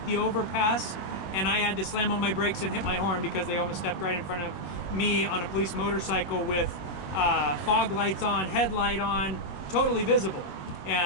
the overpass, and I had to slam on my brakes and hit my horn because they almost stepped right in front of me on a police motorcycle with fog lights on, headlight on, totally visible.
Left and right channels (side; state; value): right; late; 21 ms